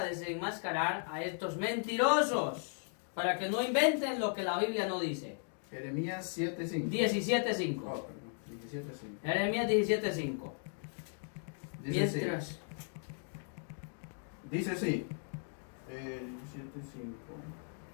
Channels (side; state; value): right; silent; 53 dB below the other